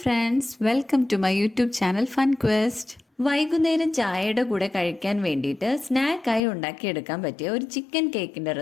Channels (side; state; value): right; drops out; at 6.4 s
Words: friends, welcome to my YouTube channel Fun Quest. വൈകുന്നേരം ചായയുടെ കൂടെ കഴിക്കാൻ വേണ്ടിയിട്ട് സ്നാക്കായി ഉണ്ടാക്കിയെടുക്കാൻ പറ്റിയ ഒരു ചിക്കൻ കേക്കിന്റെ